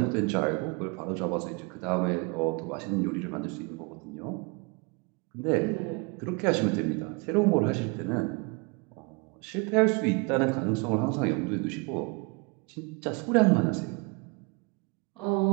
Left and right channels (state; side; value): quieter; left; 30.3 dB